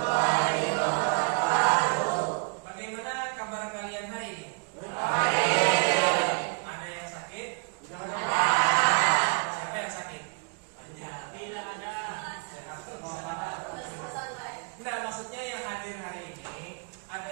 wabarakatuh. Bagaimana kabar kalian hari ini? Baik. Ada yang sakit? Ada. Siapa yang sakit? Banyak. Tidak ada. Sehat semua. Nah, maksudnya yang hadir hari ini ada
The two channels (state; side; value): quieter; left; 36.3 dB